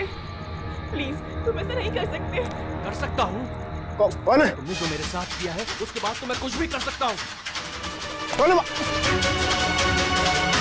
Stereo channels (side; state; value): both; identical; correlation 1.00